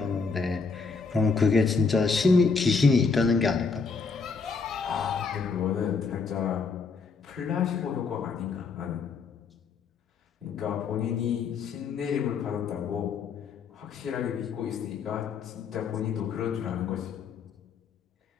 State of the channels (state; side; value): quieter; right; 4.9 dB